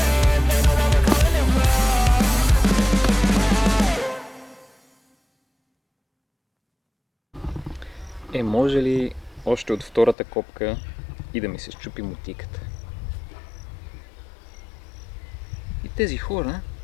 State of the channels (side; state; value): right; drops out; at 10.2 s